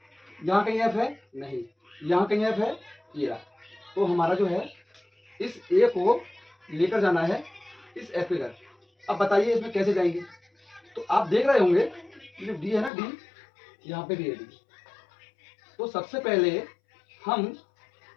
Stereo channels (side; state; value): right; drops out; at 12.9 s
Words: यहाँ कहीं एफ है नहीं, यहाँ कहीं एफ है, ये रहा। तो हमारा जो है इस ए को लेकर जाना है इस एफ के घर। अब बताइए इसमें कैसे जाएंगे। तो आप देख रहे होंगे जो डी है ना, डी यहाँ पे भी है डी। तो सबसे पहले हम,